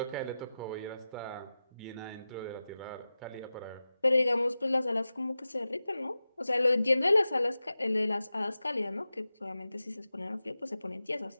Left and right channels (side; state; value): both; inverted; correlation -0.94